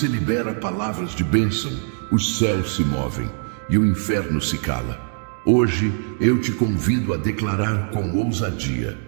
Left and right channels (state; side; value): silent; left; 62 dB below the other